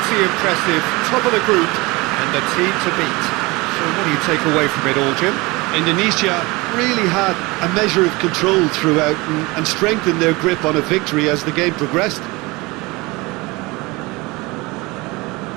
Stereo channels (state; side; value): quieter; left; 23.6 dB